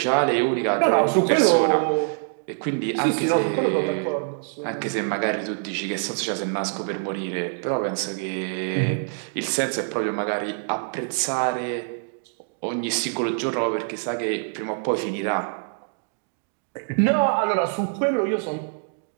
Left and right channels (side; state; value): left; silent; digital silence